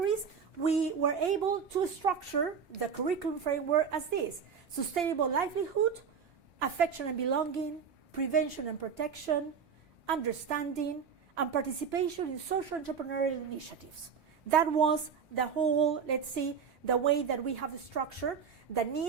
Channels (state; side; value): quieter; left; 6.6 dB